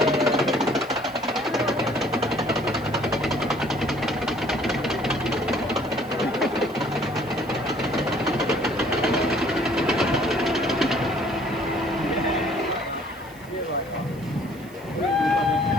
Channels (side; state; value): right; noise; hiss, 24 dB below the sound